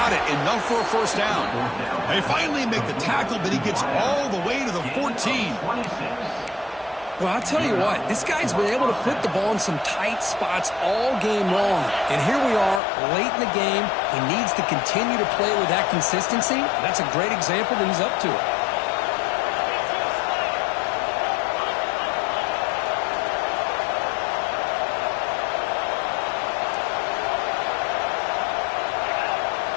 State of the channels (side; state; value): right; drops out; at 12.8 s